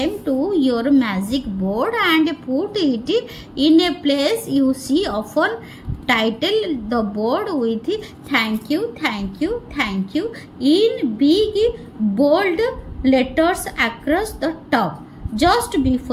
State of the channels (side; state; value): both; identical; correlation 1.00